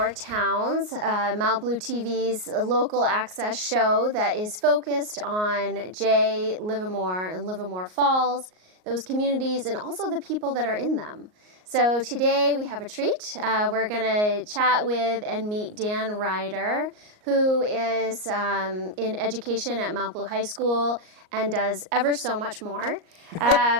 Towns, Mount Blue TV's local access show that is focused on Jay, Livermore, and Livermore Falls, those communities, and also the people that are in them. So today we have a treat. We're going to chat with and meet Dan Ryder, who is in education at Mount Blue High School and does ever so much more.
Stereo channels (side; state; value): left; late; 38 ms